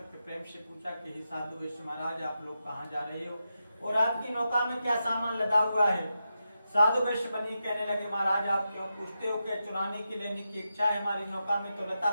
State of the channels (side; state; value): both; inverted; correlation -0.88